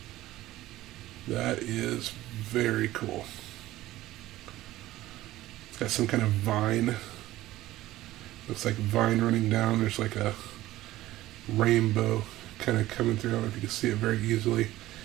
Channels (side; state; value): left; quieter; 16.0 dB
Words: That is very cool. It's got some kind of vine. Looks like vine running down. There's like a rainbow kind of coming through. I don't know if you can see it very easily.